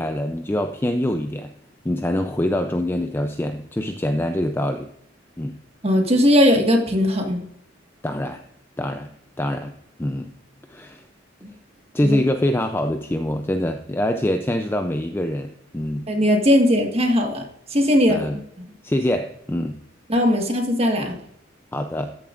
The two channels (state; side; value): normal; both; correlation 0.72